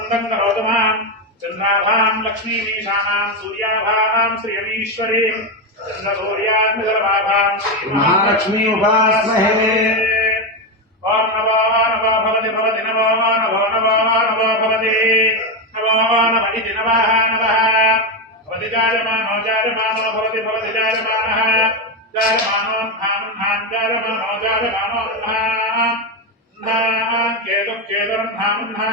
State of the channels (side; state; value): both; normal; correlation 0.10